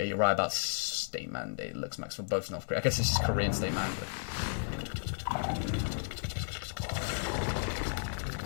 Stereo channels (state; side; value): silent; right; digital silence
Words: you're right about state mandate. Looks max for both North Korea. I guess this is Korean state mandate.